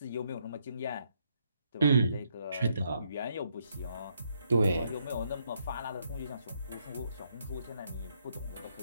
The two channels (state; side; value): inverted; both; correlation -0.74